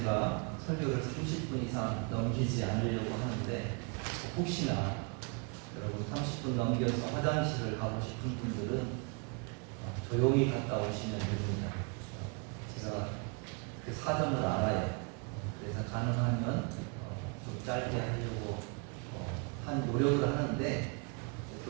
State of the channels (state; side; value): quieter; left; 35.2 dB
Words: 설교를 30분 이상 넘기지 않으려고 하는데 혹시나 여러분 30분 넘겨서 화장실을 가고 싶은 분들은 조용히 갔다 오시면 됩니다. 제가 그 사정을 알아요. 그래서 가능하면 좀 짧게 하려고 한 노력을 하는데